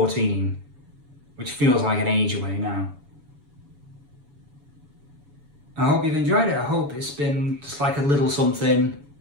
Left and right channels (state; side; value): late; left; 7.0 ms